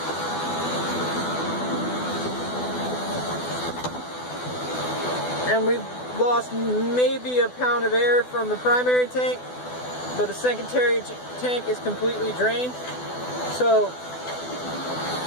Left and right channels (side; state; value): right; late; 12 ms